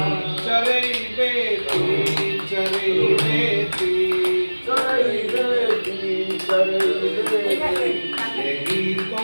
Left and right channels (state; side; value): inverted; both; correlation -1.00